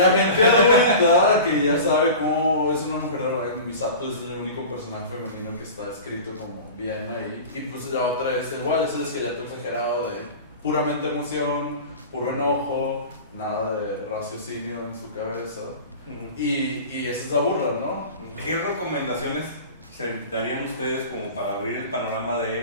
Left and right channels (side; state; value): both; inverted; correlation -0.35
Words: gente adulta que ya sabe cómo es una mujer de Ryan Misato es el único personaje femenino que está escrito como bien ahí. Y pues la otra es igual, es el esqueleto exagerado de puramente emoción, puro enojo, nada de raciocinio en su cabeza. Y esa es la burla, ¿no? ¿Qué recomendaciones se darían ustedes como para abrir el panorama